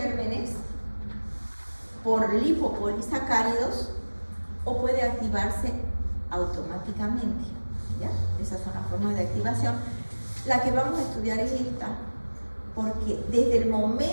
por lipopolisacáridos, o puede activarse automáticamente, ¿ya? Esas son las formas de activación. La que vamos a estudiar es esta, porque desde el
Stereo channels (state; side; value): inverted; both; correlation -1.00